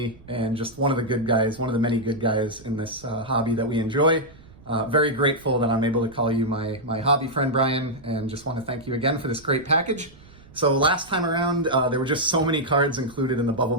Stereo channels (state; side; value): noise; right; rumble, 23 dB below the sound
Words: and just one of the good guys, one of the many good guys in this hobby that we enjoy. Very grateful that I'm able to call you my hobby friend, Brian, and just want to thank you again for this great package. So last time around, there were just so many cards included in the bubble